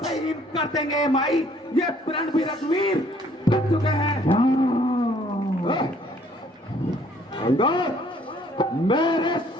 से ही कर देंगे माई, ये प्रण भी रघुवीर कर चुके हैं। अंगद, मेरे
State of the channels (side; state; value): both; normal; correlation 0.61